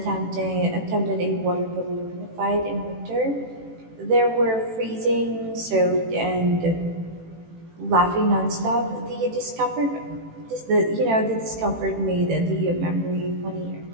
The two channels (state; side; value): late; left; 18 ms